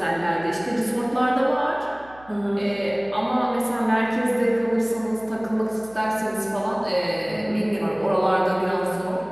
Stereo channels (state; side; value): noise; right; hum, 24 dB below the sound